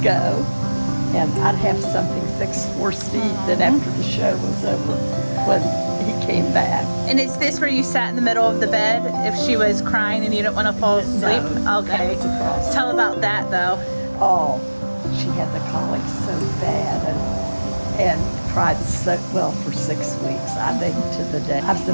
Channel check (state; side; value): inverted; both; correlation -1.00